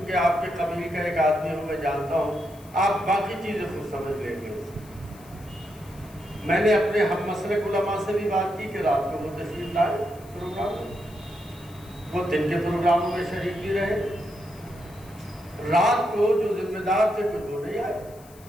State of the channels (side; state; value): left; noise; hiss, 24 dB below the sound